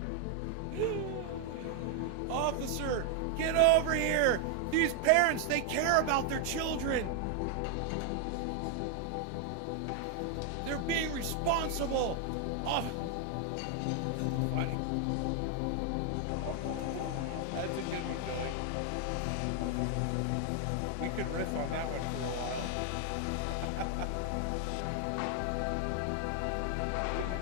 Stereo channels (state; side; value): different; both; correlation 0.00